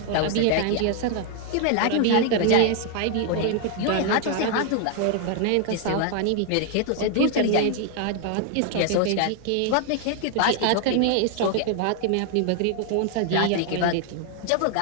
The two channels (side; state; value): both; different; correlation 0.00